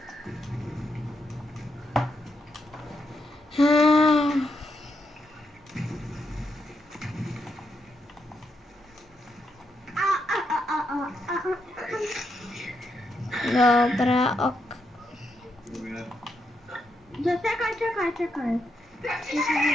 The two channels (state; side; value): normal; both; correlation 0.81